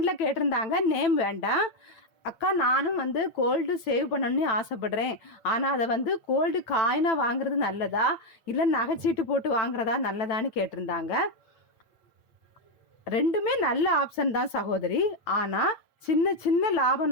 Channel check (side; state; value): right; late; 9.0 ms